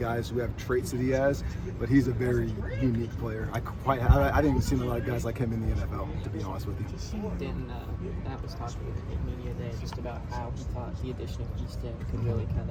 who have traits that he has, but he's a very unique player. I didn't see a lot of guys like him in the NFL, to be honest with you. Matt was talking in media day just about how he thought the addition of Easton could really kind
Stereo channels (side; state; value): both; identical; correlation 1.00